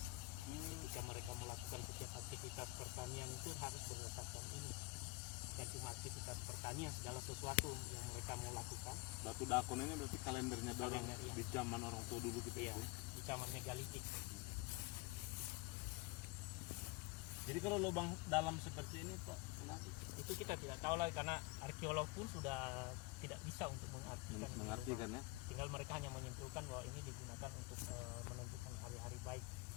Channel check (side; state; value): right; quieter; 23.4 dB